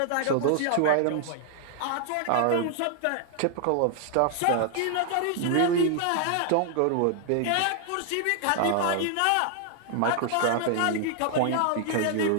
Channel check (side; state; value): both; different; correlation 0.00